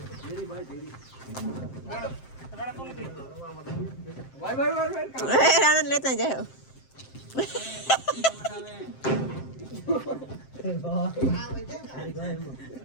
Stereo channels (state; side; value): late; right; 7.6 ms